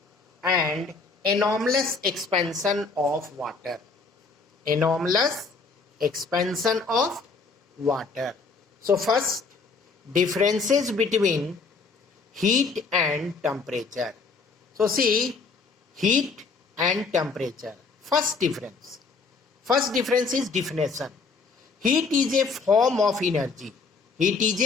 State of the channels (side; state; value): right; quieter; 4.5 dB